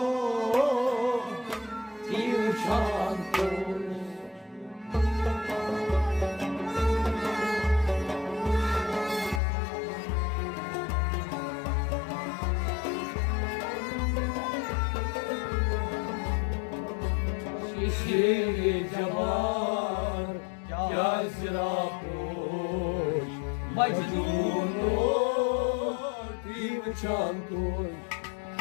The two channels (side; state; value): right; drops out; at 9.4 s